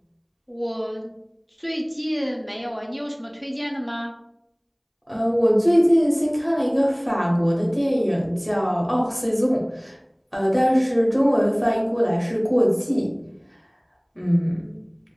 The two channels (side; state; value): both; identical; correlation 1.00